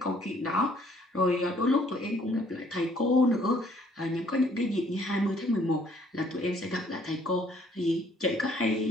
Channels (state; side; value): normal; both; correlation 0.62